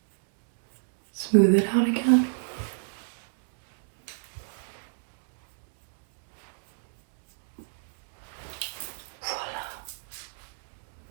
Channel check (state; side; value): silent; left; digital silence